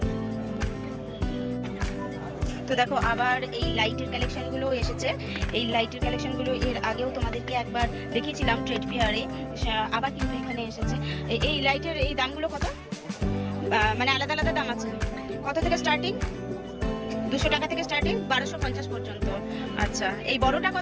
তো দেখো আবার এই লাইটের কালেকশনগুলো এসেছে। এই লাইটের কালেকশনগুলো এর আগেও তোমাদেরকে একবার দেখিয়েছিলাম ট্রেড ফেয়ারে, আবার কিন্তু এখানে এসেছে। এই লাইটের এই দামগুলো কত? মানে আলাদা আলাদা দাম আছে। কত থেকে স্টার্টিং? 200 টাকা থেকে স্টার্টিং, 1250 পর্যন্ত। আচ্ছা, এই বড়টা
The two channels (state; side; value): identical; both; correlation 1.00